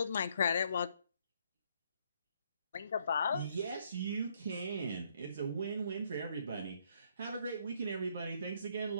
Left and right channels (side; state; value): both; inverted; correlation -0.70